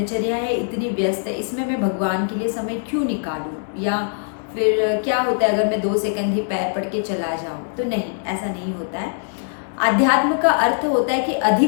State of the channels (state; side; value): silent; right; digital silence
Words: है इतनी व्यस्त है, इसमें मैं भगवान के लिए समय क्यों निकालूं, या फिर क्या होता है अगर मैं 2 सेकंड ही पैर पड़ के चला जाऊं। तो नहीं, ऐसा नहीं होता है। आध्यात्म का अर्थ होता है कि